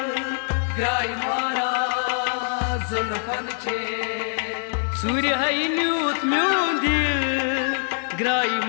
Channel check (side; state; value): right; silent; digital silence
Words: ग्राई मारा जुल्फन छे सूर्य है न्यूत म्यू दिल ग्राई